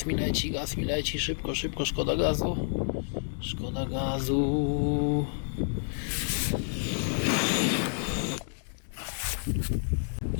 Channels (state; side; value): silent; right; digital silence